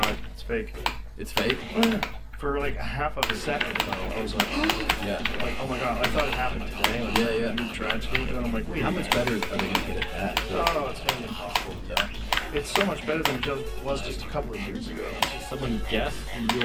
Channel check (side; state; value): both; identical; correlation 1.00